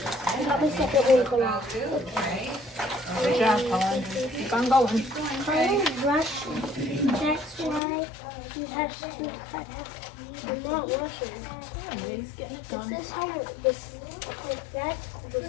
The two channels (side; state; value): right; drops out; at 7.8 s